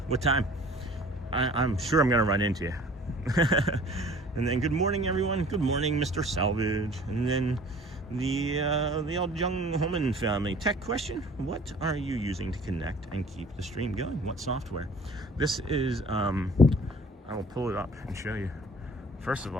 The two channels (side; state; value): both; normal; correlation 0.49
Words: what time? I'm sure I'm gonna run into you. And then good morning, everyone. Good morning, Mr. Salvage. And then the old Young Holman family. Tech question: what are you using to connect and keep the stream going? What software? This is I will pull it up and show you. First of